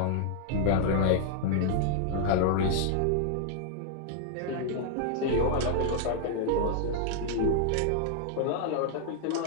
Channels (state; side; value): different; both; correlation 0.00